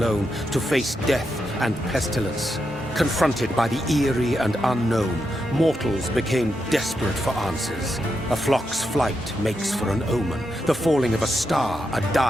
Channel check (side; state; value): both; normal; correlation 0.85